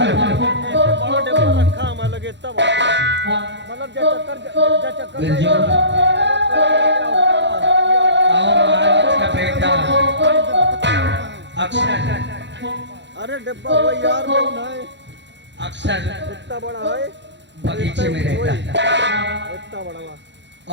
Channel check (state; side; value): late; left; 0.52 ms